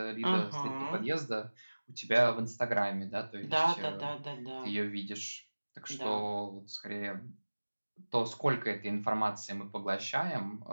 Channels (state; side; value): inverted; both; correlation -1.00